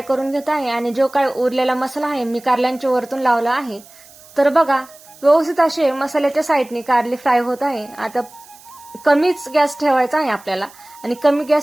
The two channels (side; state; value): right; noise; hiss, 23 dB below the sound